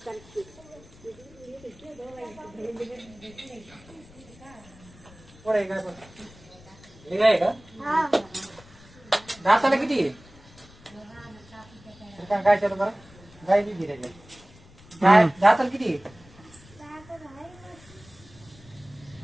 काय का दाताला किती काय चालू बरं गाय बी गिरायची दाताला किती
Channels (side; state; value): left; noise; rumble, 23 dB below the sound